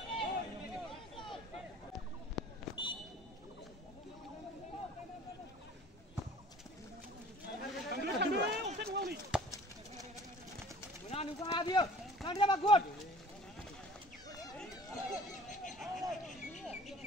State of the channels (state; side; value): normal; both; correlation 0.47